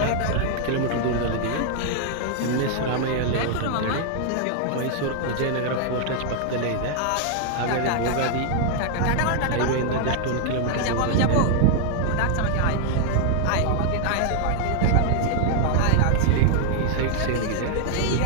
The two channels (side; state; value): both; different; correlation 0.00